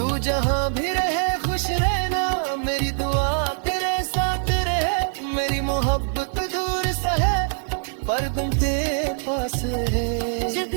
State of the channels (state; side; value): silent; left; digital silence